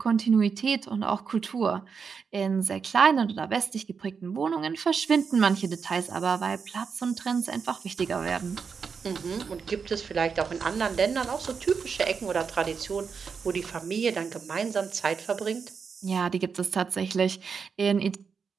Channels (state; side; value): quieter; left; 5.9 dB